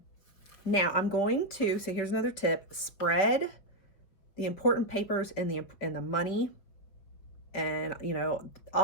I'm going to, so here's another tip, spread the important papers and the money and, you know,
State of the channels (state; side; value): late; right; 5.3 ms